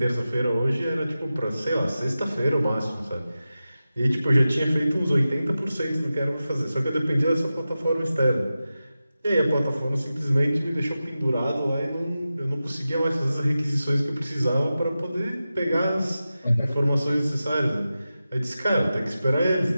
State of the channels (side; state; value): both; inverted; correlation -0.93